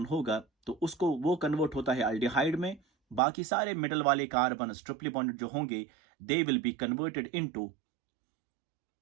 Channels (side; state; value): left; drops out; at 3.2 s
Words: होगा तो उसको वो convert होता है अल्डिहाइड में. बाकी सारे मिडल वाले कार्बन ट्रिपली बॉन्डेड जो होंगे, दे will be converted into